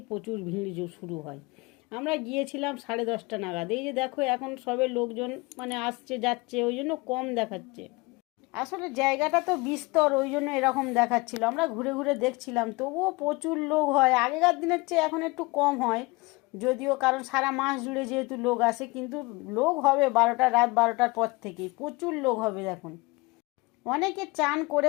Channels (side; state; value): right; quieter; 24.7 dB